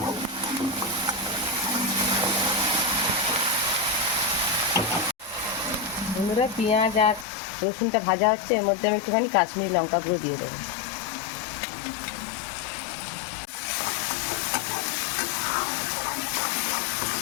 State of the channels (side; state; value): right; drops out; at 7.2 s